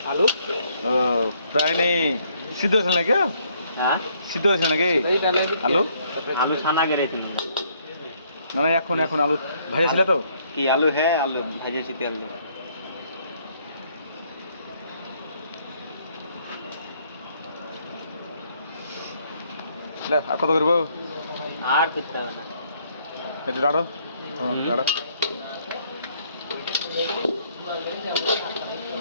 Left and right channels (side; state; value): both; inverted; correlation -0.67